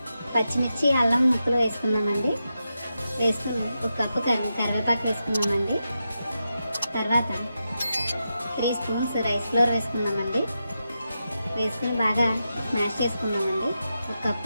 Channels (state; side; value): inverted; both; correlation -0.88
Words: పచ్చిమిర్చి అల్లం ముక్కలు వేసుకుందామండి. వేసుకుని ఒక కప్పు కరివేపాకు వేసుకుందామండి. తర్వాత 3 స్పూన్స్ రైస్ ఫ్లోర్ వేసుకుందామండి. వేసుకుని బాగా స్మాష్ చేసుకుందామండి. ఒక